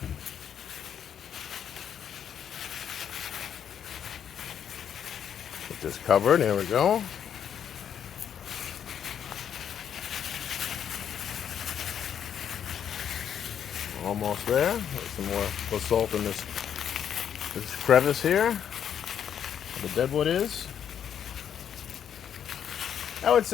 Get this covered. There we go. Almost there. Get some more basalt in this crevice here. Where the deadwood is. I would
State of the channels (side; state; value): right; quieter; 8.8 dB